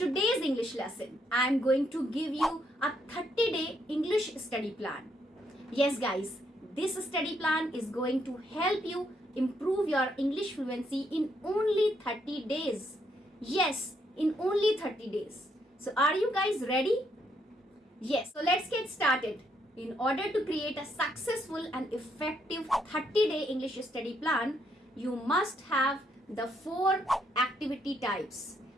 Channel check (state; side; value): normal; both; correlation 0.74